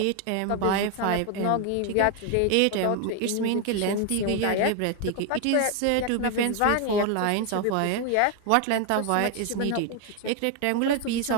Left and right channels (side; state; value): both; different; correlation 0.01